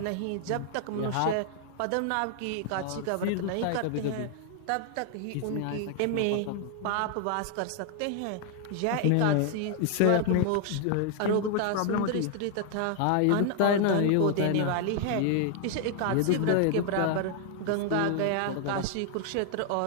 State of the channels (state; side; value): different; both; correlation 0.00